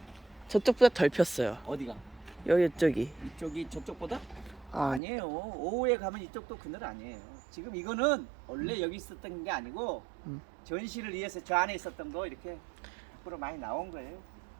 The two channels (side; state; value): left; drops out; at 5.0 s